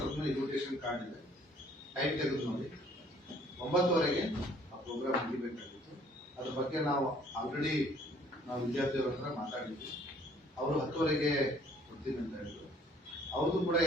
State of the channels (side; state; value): both; normal; correlation 0.58